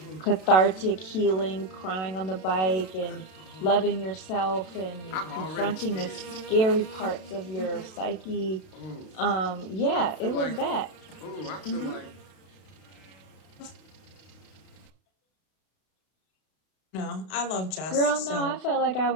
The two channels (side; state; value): right; late; 32 ms